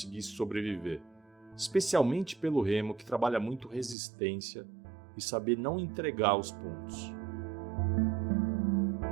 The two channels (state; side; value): drops out; left; at 4.0 s